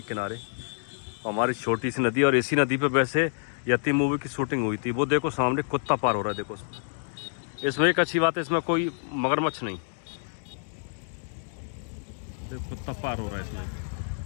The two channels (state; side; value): silent; right; digital silence